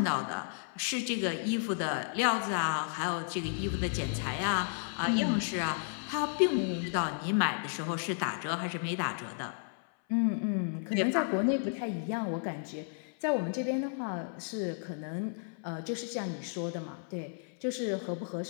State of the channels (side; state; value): right; silent; 56 dB below the other